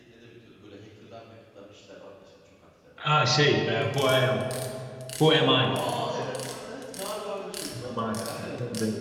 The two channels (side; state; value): both; identical; correlation 1.00